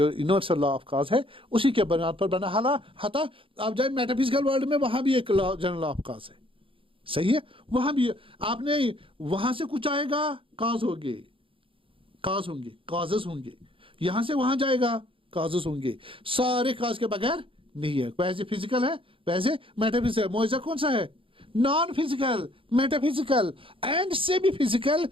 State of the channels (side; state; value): left; late; 0.26 ms